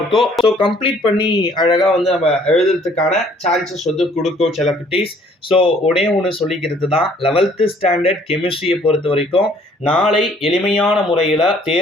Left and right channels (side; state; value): both; normal; correlation 0.59